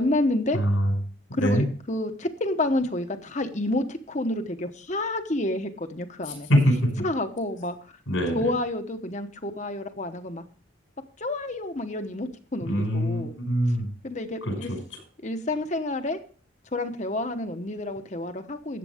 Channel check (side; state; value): both; normal; correlation 0.59